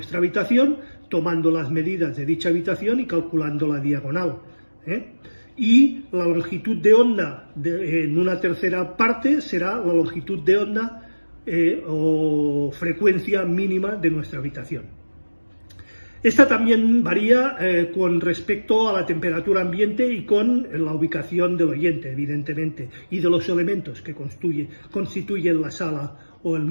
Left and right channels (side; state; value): both; inverted; correlation -1.00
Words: habitación tomando las medidas de dicha habitación y calculando la diagonal. Y la longitud de onda en una tercera parte será la longitud de onda o frecuencia mínima de nuestra habitación. Esta también varía con respecto a la temperatura ambiente y con la ubicación del oyente, evidentemente, y de los elementos que constituyen la sala o el